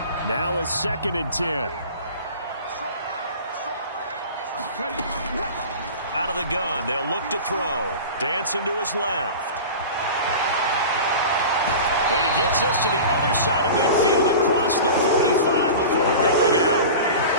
Now a 2nd and 10. Out of the gun, they'll look to throw. Dancing to his left. And he gets us to the other side of midfield across the 45 before going out.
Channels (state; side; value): inverted; both; correlation -0.34